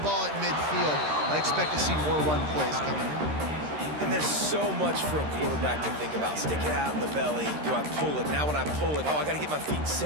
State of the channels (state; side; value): late; left; 13 ms